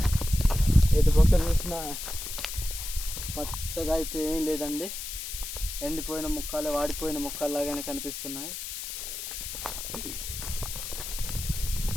పక్క చూసినా పచ్చగా అయితే ఏం లేదండి. ఎండిపోయిన ముక్కలు, వాడిపోయిన ముక్కలు లాగానే కనిపిస్తున్నాయి.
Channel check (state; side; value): noise; left; hiss, 7 dB below the sound